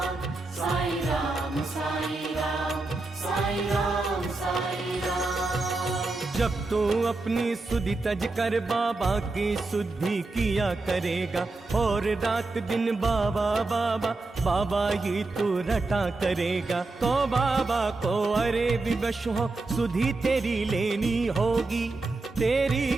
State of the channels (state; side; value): quieter; left; 3.4 dB